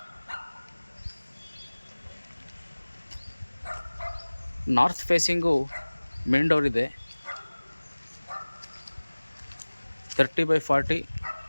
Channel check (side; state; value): both; inverted; correlation -1.00